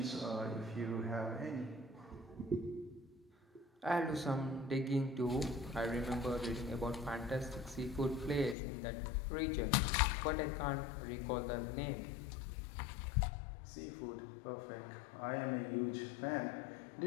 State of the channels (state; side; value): drops out; right; at 8.6 s